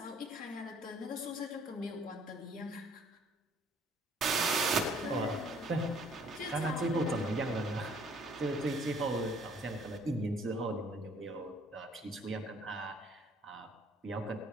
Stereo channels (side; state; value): both; normal; correlation 0.60